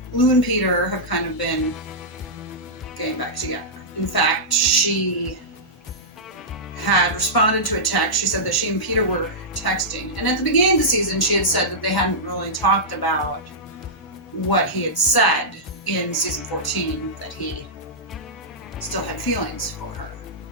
Lou and Peter have kind of been getting back together. In fact, she had responded to a text. She said that she and Peter were texting. And at the beginning of the season, she had said that they hadn't really talked about what he had said in season 14, that he still had feelings for her.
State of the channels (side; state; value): both; normal; correlation -0.12